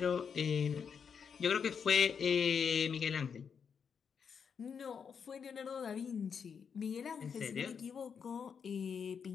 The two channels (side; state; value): right; quieter; 6.7 dB